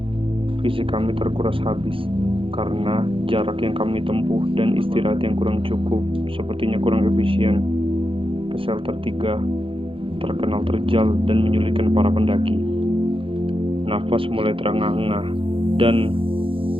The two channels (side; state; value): left; late; 0.26 ms